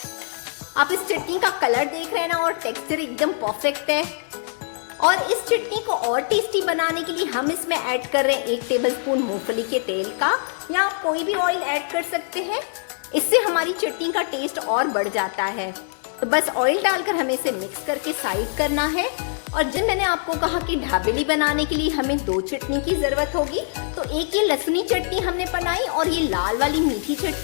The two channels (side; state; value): right; silent; 63 dB below the other